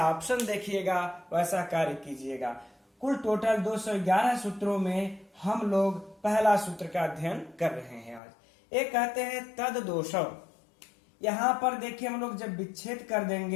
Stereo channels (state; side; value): drops out; right; at 8.2 s